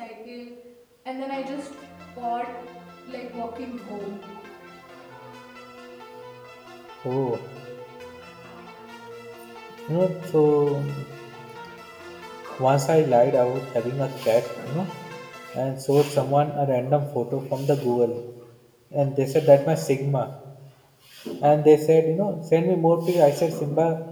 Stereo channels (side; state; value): both; identical; correlation 1.00